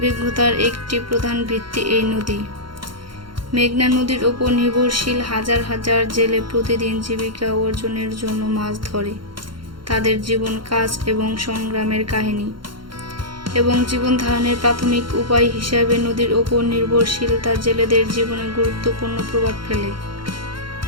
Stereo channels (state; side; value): late; left; 0.73 ms